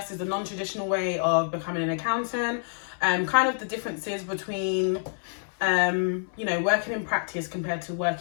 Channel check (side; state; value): right; silent; 60 dB below the other